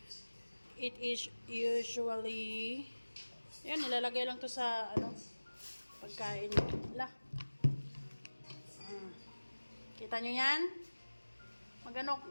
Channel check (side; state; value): both; inverted; correlation -1.00